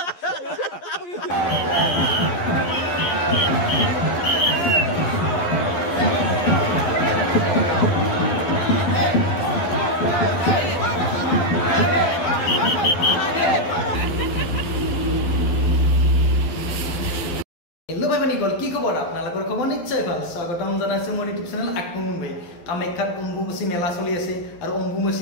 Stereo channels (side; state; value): right; late; 11 ms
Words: ভাই মানিকল কি খবৰ আপোনালোকৰ খবৰ নিশ্চয় ভাল স্বাগতম জনাইছো মোৰ ইউটিউব চেনেল আকমুন ভাই কামাখ্যাত অম্বুবাচী মেলা চলি আছে আৰু